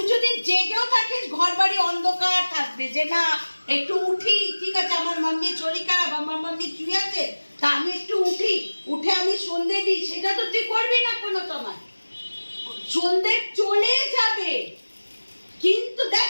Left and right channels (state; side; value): inverted; both; correlation -1.00